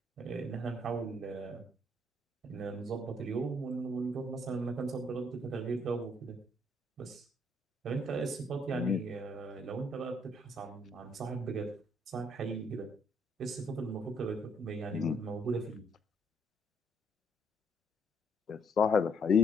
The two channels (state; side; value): normal; both; correlation 0.69